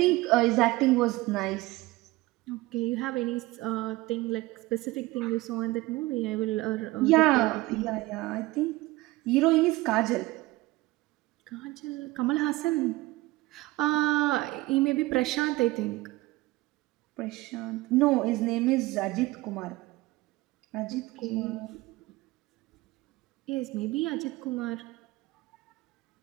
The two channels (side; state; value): left; quieter; 19.8 dB